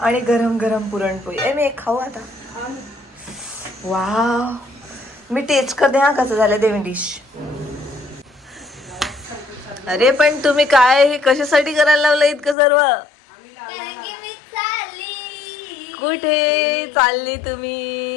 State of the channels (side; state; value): right; drops out; at 12.6 s